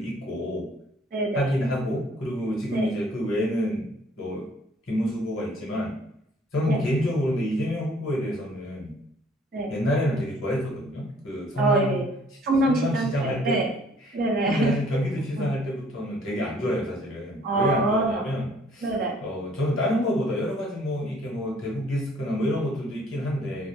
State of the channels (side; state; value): both; normal; correlation 0.60